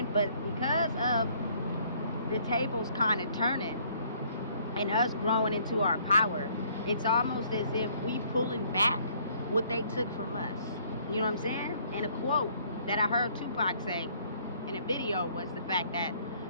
But because of the tables kind of turning and us growing into our power, it's almost as if we pulling back what they took from us. You know what I'm saying? And a quote that I heard Tupac say in a video was the fact that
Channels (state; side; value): inverted; both; correlation -0.62